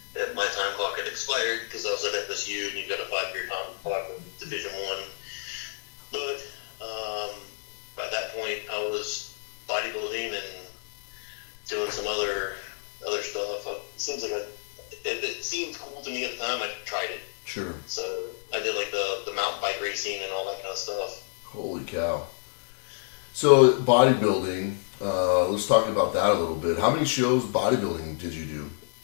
And my time clock had expired because I was at FSU and you've got a 5-year time clock with Division I. But by that point, I was bodybuilding and doing some other stuff. It seems like it seemed cool to me at the time. I tried it. Sure. So I did like the mountain bike racing and all that kind of stuff. Holy cow. So bodybuilding, let's talk about that a little bit. How many shows bodybuilding did you do?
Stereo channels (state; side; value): silent; right; digital silence